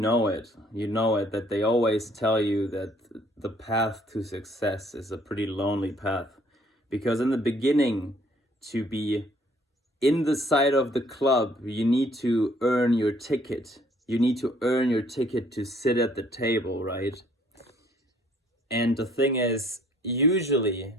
it. You know it, that they always tell you that the path to success is a pretty lonely path. Because in the beginning, to be in the side of the club, you need to earn your ticket. You need to earn your ticket to sit at the table, right? And the thing is, usually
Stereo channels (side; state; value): both; normal; correlation 0.61